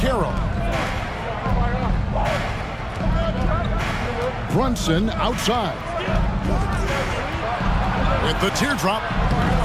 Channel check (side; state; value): both; identical; correlation 1.00